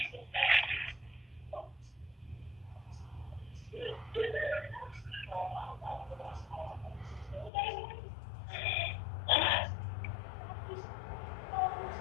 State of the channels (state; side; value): drops out; right; at 7.5 s